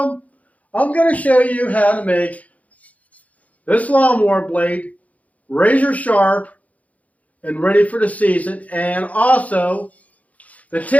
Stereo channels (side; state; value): right; late; 0.070 ms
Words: I'm going to show you how to make this lawnmower blade razor sharp and ready for the season, and also the